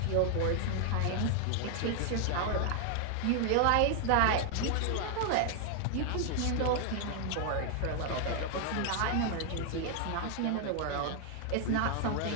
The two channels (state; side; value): different; both; correlation 0.00